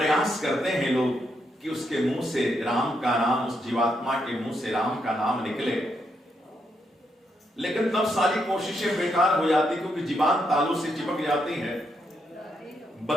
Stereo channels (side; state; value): both; normal; correlation 0.79